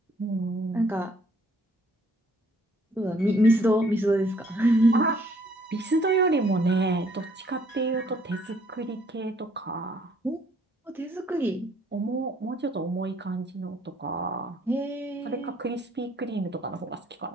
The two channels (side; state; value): both; normal; correlation 0.63